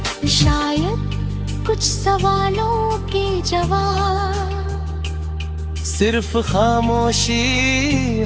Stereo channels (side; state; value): both; identical; correlation 1.00